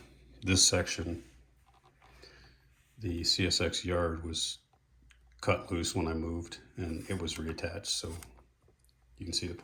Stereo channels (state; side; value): identical; both; correlation 1.00